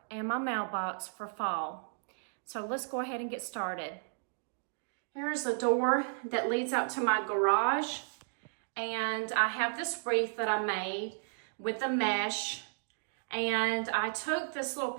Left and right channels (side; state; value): left; silent; digital silence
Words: and my mailbox for fall. So let's go ahead and get started. Here's the door that leads out to my garage, and I have this wreath that I made with the mesh, and I took this little